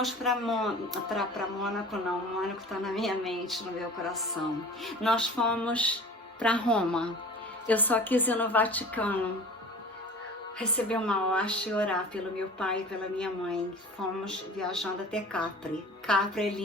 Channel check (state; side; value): normal; both; correlation 0.40